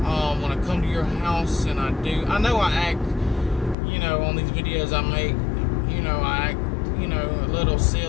When I come to your house, and I know I act, you know, on these videos I make, you know, I act, you know, a little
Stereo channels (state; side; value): drops out; right; at 3.8 s